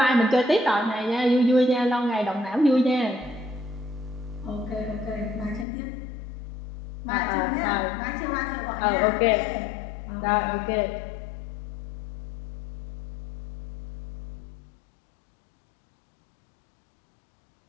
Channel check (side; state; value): right; drops out; at 5.7 s